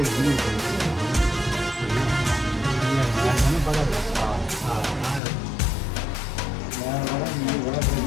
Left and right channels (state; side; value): drops out; right; at 5.2 s